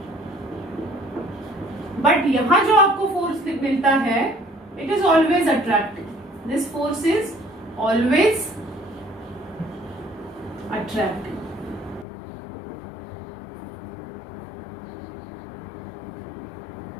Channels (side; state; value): right; drops out; at 12.1 s